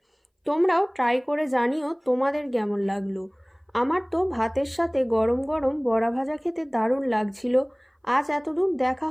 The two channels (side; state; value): both; identical; correlation 1.00